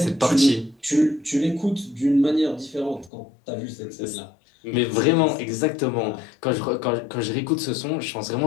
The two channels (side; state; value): right; drops out; at 3.1 s